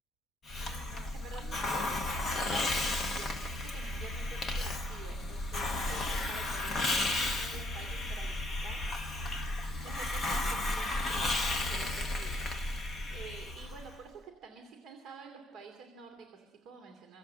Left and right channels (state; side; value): normal; both; correlation 0.69